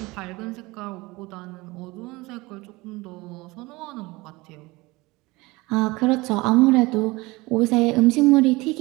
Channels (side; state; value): left; quieter; 22.3 dB